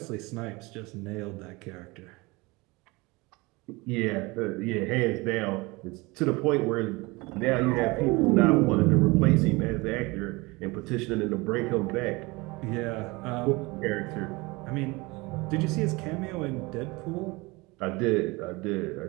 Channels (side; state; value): left; quieter; 24.1 dB